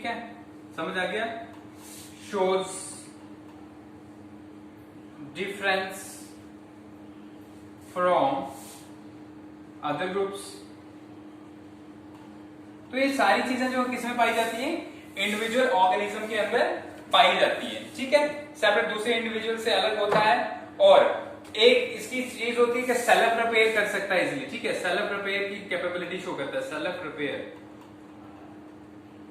है, समझ आ गया। Shows difference from other groups. तो ये सारी चीजें जो किसमें पाई जाती है, इंडिविजुअल ऑर्गेनिज्म के अंदर पाई जाती है, ठीक है। सेपरेट दूसरे इंडिविजुअल से अलग होता है, और एक इसकी चीज होती है कि सेल्फ रिपेयर कर सकता है इजीली, ठीक है। सेल्फ रिपेयर की कैपेबिलिटी शो करता है, सेल्फ रिपेयर,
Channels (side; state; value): both; identical; correlation 1.00